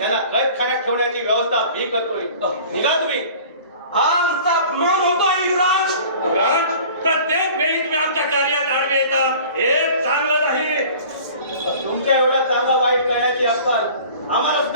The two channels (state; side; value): inverted; both; correlation -0.45